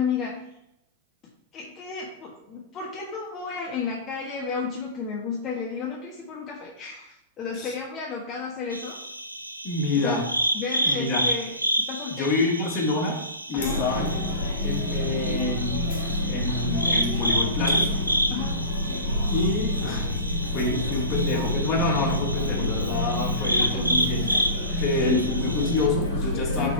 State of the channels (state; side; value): inverted; both; correlation -0.34